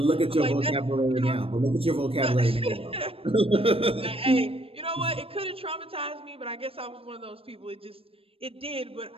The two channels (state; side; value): late; left; 0.28 ms